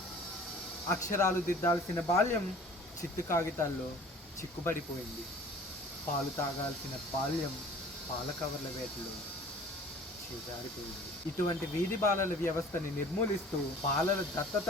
అక్షరాలు దిద్దాల్సిన బాల్యం చిత్తు కాగితాల్లో చిక్కుబడిపోయింది. పాలు తాగాల్సిన బాల్యం పాల కవర్ల వేటలో చేజారిపోయింది. ఇటువంటి వీధి బాలల వ్యవస్థని నిర్మూలిస్తూ బాలల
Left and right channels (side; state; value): both; normal; correlation 0.48